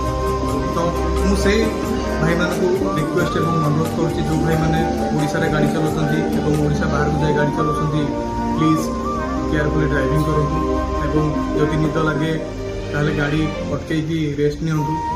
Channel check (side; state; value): both; identical; correlation 1.00